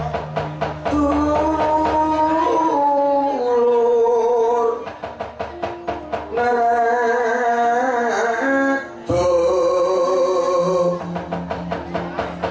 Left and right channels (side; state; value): both; identical; correlation 1.00